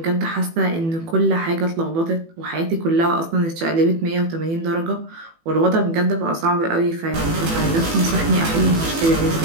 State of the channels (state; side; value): late; left; 18 ms